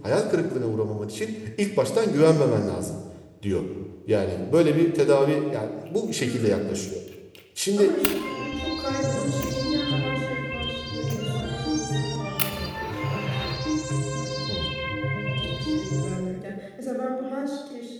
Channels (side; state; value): both; identical; correlation 1.00